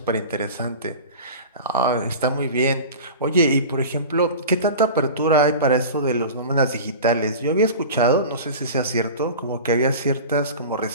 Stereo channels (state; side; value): inverted; both; correlation -0.33